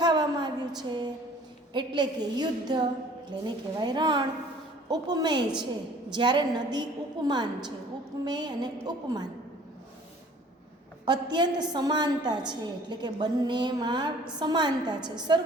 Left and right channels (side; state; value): both; normal; correlation 0.52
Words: આવ્યું છે. એટલે કે યુદ્ધ એટલે એને કહેવાય રણ. ઉપમેય છે જ્યારે નદી ઉપમાન છે. ઉપમેય અને ઉપમાન અત્યંત સમાનતા છે, એટલે કે બંનેમાં સમાનતા છે,